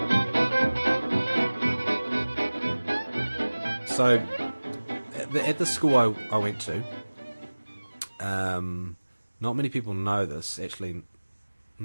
So, at the school I went to, not many people know this. Actually,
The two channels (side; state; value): both; inverted; correlation -1.00